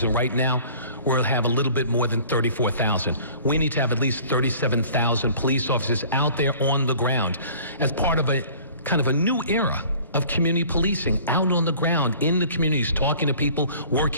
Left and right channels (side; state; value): both; inverted; correlation -0.49